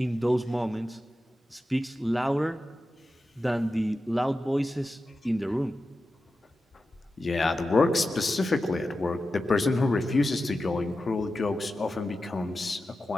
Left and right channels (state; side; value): normal; both; correlation 0.92